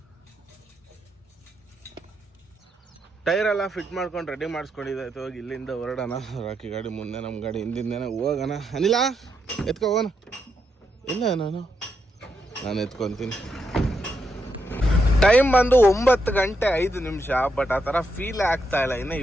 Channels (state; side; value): normal; both; correlation 0.82